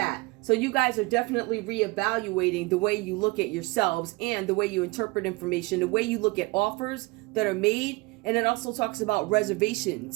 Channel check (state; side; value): quieter; left; 24.7 dB